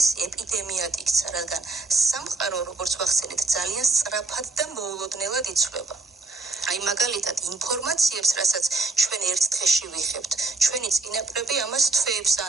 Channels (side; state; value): left; quieter; 3.5 dB